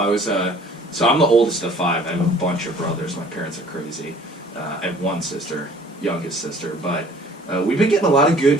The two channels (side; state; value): both; normal; correlation 0.52